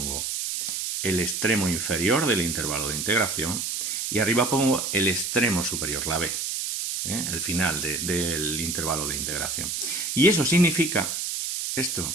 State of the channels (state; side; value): noise; right; hiss, 2 dB below the sound